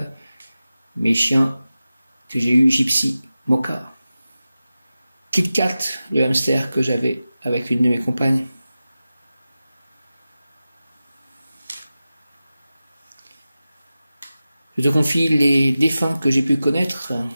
mes chiens que j'ai eu, Gypsy, Mocha, Kit Kat, le hamster que j'avais avec une de mes compagnes. Je te confie les défunts que j'ai pu connaître.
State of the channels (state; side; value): inverted; both; correlation -0.94